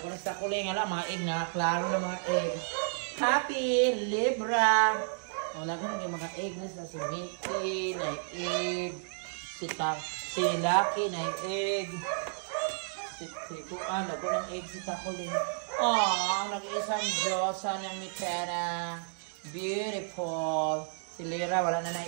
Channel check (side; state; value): left; silent; digital silence